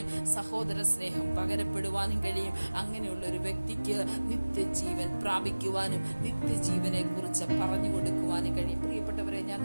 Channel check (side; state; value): both; inverted; correlation -1.00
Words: സഹോദര സ്നേഹം പകരപ്പെടുവാനും കഴിയും. അങ്ങനെയുള്ള ഒരു വ്യക്തിക്ക് നിത്യജീവൻ പ്രാപിക്കുവാനും നിത്യജീവനെ കുറിച്ച് പറഞ്ഞു കൊടുക്കുവാനും കഴിയും. പ്രിയപ്പെട്ടവരെ, ഞാൻ